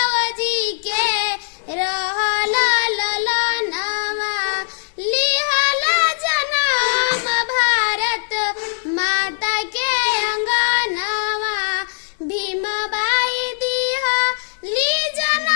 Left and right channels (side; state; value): right; silent; digital silence